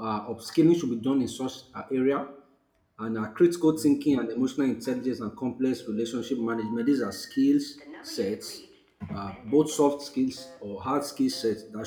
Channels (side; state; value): both; identical; correlation 1.00